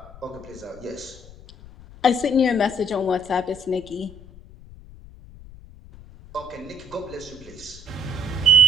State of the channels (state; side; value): noise; left; rumble, 19 dB below the sound